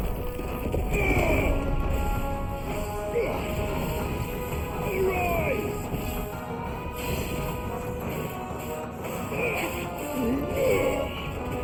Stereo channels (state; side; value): identical; both; correlation 1.00